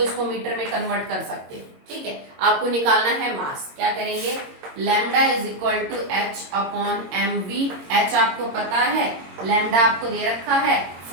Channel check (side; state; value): left; late; 22 ms